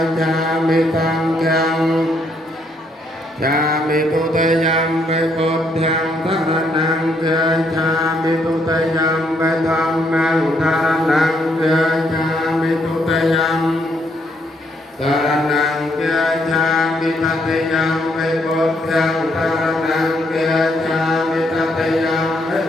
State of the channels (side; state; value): both; normal; correlation 0.73